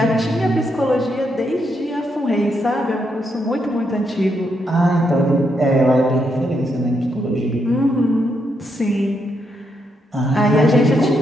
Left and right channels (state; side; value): normal; both; correlation 0.79